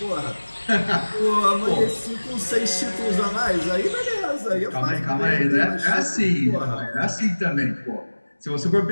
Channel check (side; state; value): both; inverted; correlation -1.00